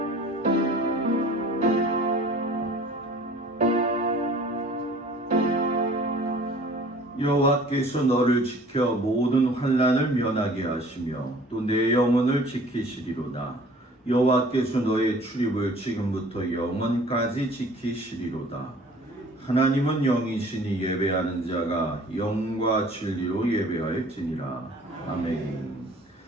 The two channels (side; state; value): both; normal; correlation 0.49